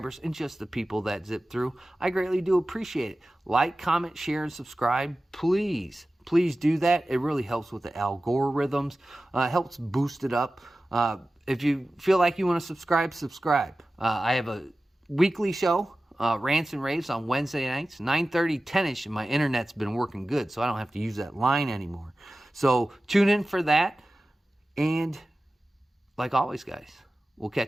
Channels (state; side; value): normal; both; correlation 0.95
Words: and just the people that zip through. I greatly do appreciate it. Like, comment, share, and subscribe. Please do that. It really helps with the algorithms. Helps boost it up. If you feel like you want to subscribe. I have a weekly show, Rants and Raves, on Wednesday nights, 9:30, 10-ish, and my internet's been working good, so I don't have to use that line anymore. So tune in for that, and like always, guys, we'll